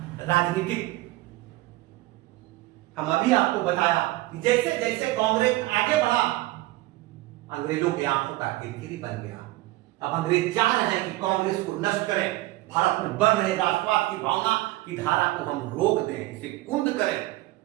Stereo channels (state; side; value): quieter; left; 18.6 dB